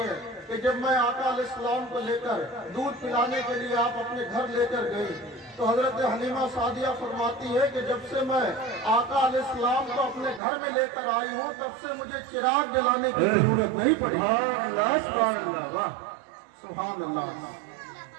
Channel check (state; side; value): drops out; left; at 10.4 s